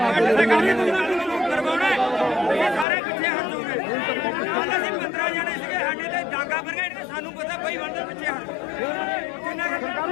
ਸਾਰੇ ਪਿੱਛੇ ਹਟ ਜਾਓਗੇ। ਕੱਲ ਅਸੀਂ 15 ਜਣੇ ਸੀਗੇ ਸਾਡੇ ਤੇ ਡਾਂਗਾ ਬਰਗੇਡ ਤੇ ਸਾਨੂੰ ਪਤਾ ਬਈ ਬੰਦੇ ਪਿੱਛੇ ਹਟ ਜਿੰਨਾ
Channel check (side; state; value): right; drops out; at 2.9 s